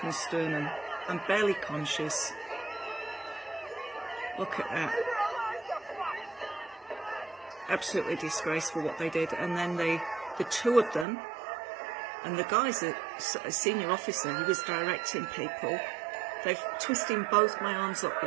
sternum, I'm barely conscious. Look at that. Absolutely disgraceful what they did. And then the two of them, and the guy's a senior officer, he was directing people. They've twisting both my arms up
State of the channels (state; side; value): drops out; left; at 11.1 s